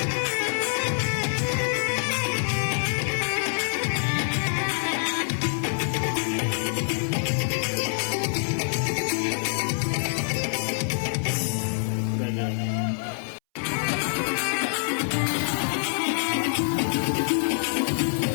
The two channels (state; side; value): silent; right; 61 dB below the other